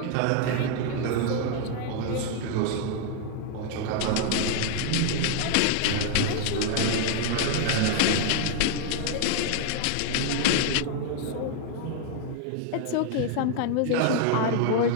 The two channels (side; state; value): both; different; correlation 0.00